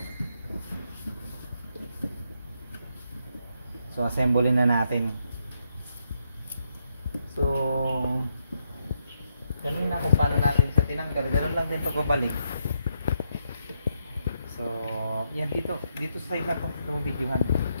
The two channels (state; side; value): inverted; both; correlation -0.79